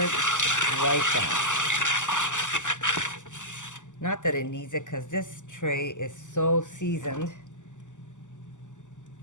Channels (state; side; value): late; right; 0.86 ms